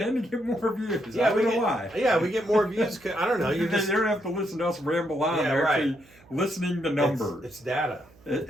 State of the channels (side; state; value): right; noise; hum, 28 dB below the sound